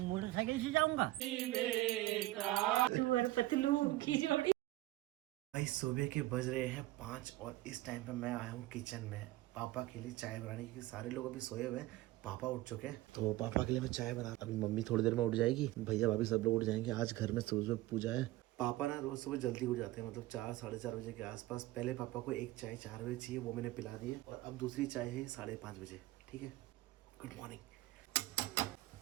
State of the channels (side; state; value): left; quieter; 17.5 dB